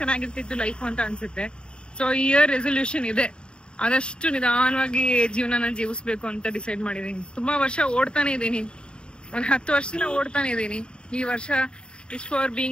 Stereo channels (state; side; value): late; right; 0.051 ms